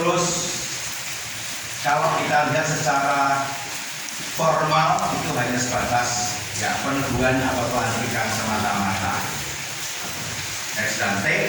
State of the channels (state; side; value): identical; both; correlation 1.00